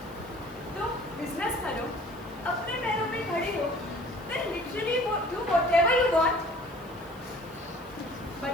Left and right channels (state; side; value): noise; right; hiss, 25 dB below the sound